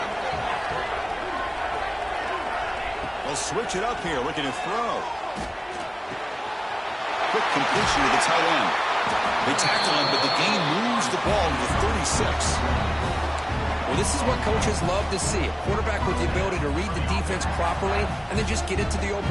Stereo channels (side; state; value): both; identical; correlation 1.00